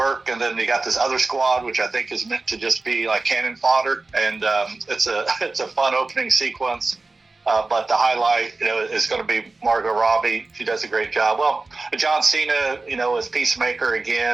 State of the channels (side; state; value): left; quieter; 3.5 dB